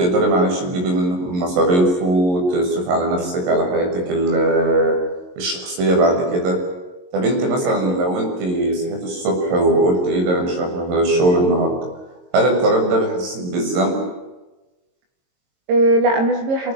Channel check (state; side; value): late; left; 22 ms